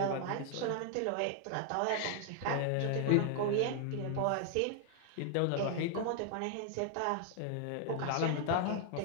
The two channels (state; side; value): different; both; correlation 0.00